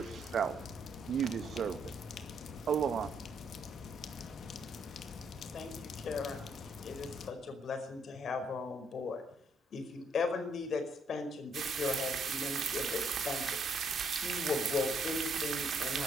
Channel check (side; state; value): both; normal; correlation 0.72